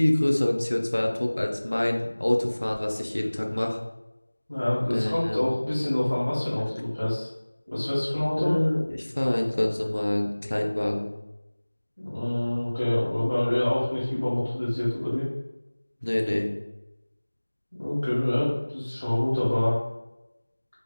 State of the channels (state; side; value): inverted; both; correlation -1.00